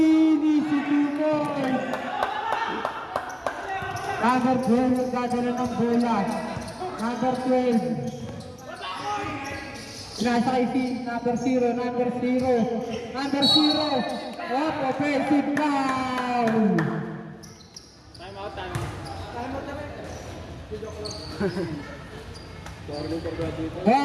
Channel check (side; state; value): both; identical; correlation 1.00